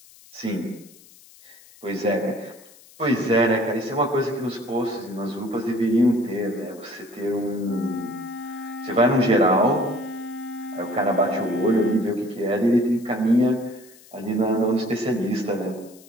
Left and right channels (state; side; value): noise; left; hiss, 24 dB below the sound